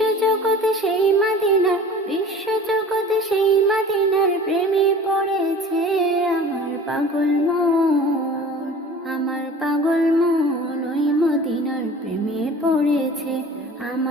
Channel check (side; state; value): both; normal; correlation 0.42